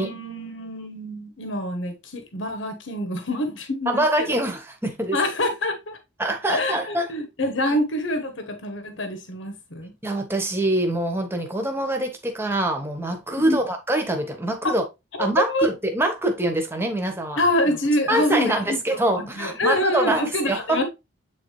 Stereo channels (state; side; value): normal; both; correlation 0.34